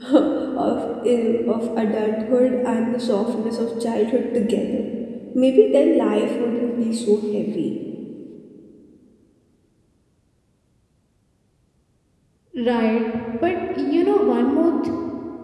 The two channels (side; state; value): both; identical; correlation 1.00